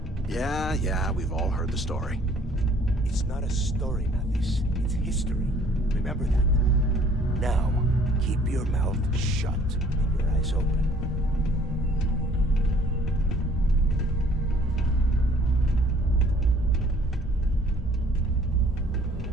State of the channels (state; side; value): normal; both; correlation 0.57